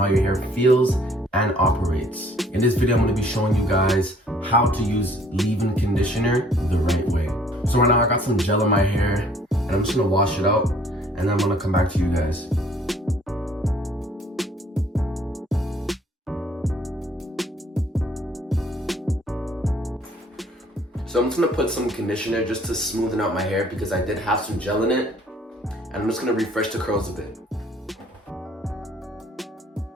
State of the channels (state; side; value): normal; both; correlation 0.59